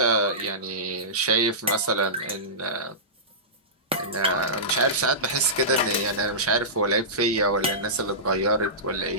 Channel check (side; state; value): both; normal; correlation -0.19